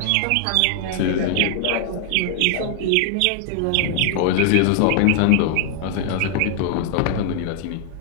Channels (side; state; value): both; different; correlation 0.00